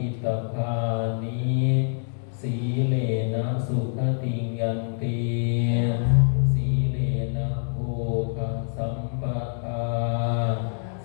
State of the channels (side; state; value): right; silent; 61 dB below the other